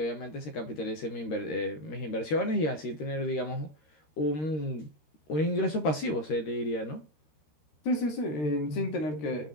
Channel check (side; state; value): right; late; 13 ms